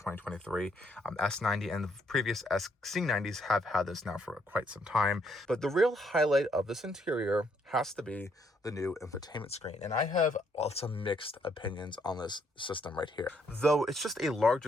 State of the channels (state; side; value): normal; both; correlation 0.72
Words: S90, and the previous XC90s have had this now for quite some time. But the real highlight of this interior has to be the new infotainment screen, and I have some mixed opinions on this system right here. Though it's just a